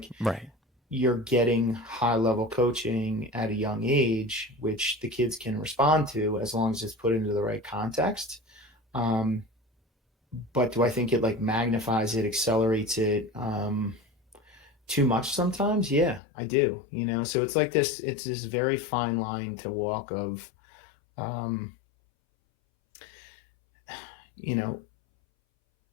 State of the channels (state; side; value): drops out; right; at 16.2 s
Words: Right. you're getting high level coaching at a young age, which the kids can respond to as long as it's put into the right context. Um, but do I think it like magnifies it, accelerates it too much sometimes? Yeah, I do. So it's like this. It's this very fine line to walk of, um, you know,